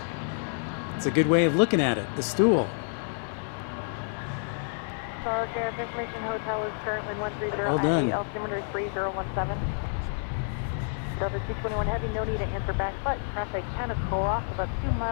It's a good way of looking at it. The stool. Charles Air Information Hotel is currently 130 Well done. altimeter 3017. Delta 221 Heavy, no need to answer back, but traffic kind of pull off about 2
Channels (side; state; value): right; silent; digital silence